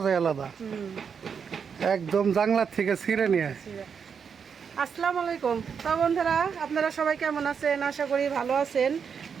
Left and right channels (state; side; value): quieter; left; 6.6 dB